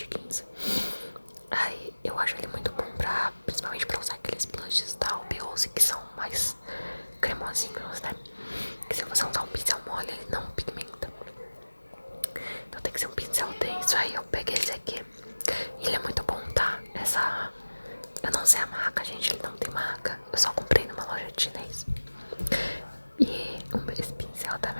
15. Aí eu acho ele muito bom principalmente pra usar aqueles blushes da Albiose que são mais cremosinhos, né? Que se você usar um pincel mole, ele não pigmenta. Então tem que ser um pincel denso. Aí eu peguei esse aqui. Ele é muito bom, tá? Eu não sei a marca, gente, ele não tem marca. Eu só comprei numa loja de chinês. E esse pincel da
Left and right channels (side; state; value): both; inverted; correlation -1.00